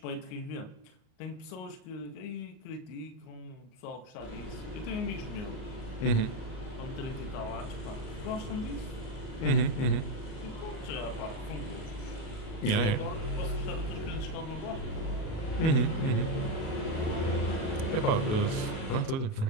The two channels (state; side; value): late; right; 37 ms